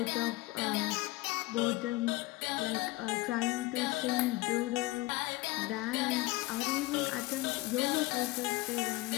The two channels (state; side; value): quieter; right; 19.9 dB